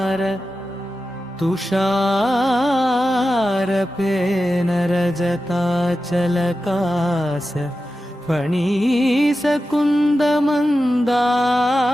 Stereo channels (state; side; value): normal; both; correlation 0.92